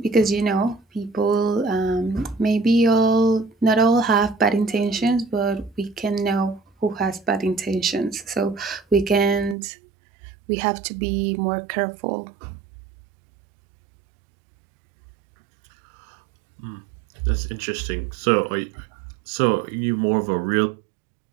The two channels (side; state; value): left; drops out; at 9.6 s